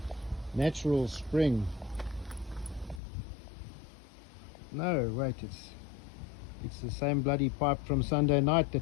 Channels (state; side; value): drops out; right; at 3.0 s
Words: natural spring. No, wait, it's the same bloody pipe from Sunday night